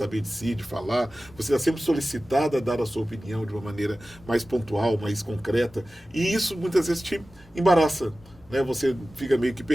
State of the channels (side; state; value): both; normal; correlation 0.96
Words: de si, de falar, você está sempre solicitado a dar a sua opinião de uma maneira mais pontual, mais concreta, e isso muitas vezes te embaraça, né? Você fica meio que